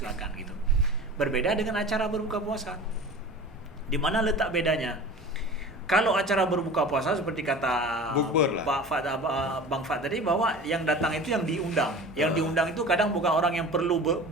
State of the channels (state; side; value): normal; both; correlation 0.37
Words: gitu. Berbeda dengan acara berbuka puasa. Di mana letak bedanya? Kalau acara berbuka puasa seperti kata Bang Fad tadi bahwa yang datang itu yang diundang. Yang diundang itu kadang bukan orang yang perlu